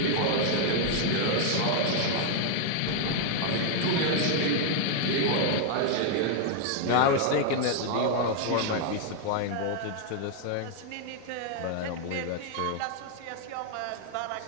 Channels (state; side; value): different; both; correlation 0.00